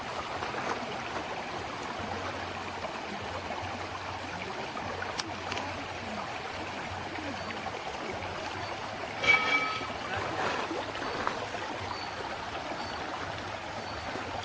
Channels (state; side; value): identical; both; correlation 1.00